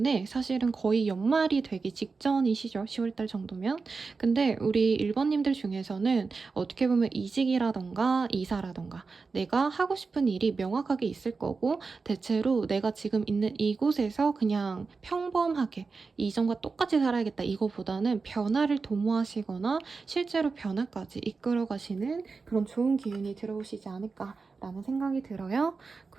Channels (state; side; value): quieter; left; 4.5 dB